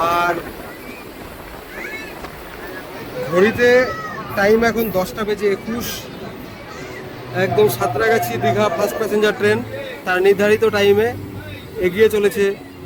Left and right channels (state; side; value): identical; both; correlation 1.00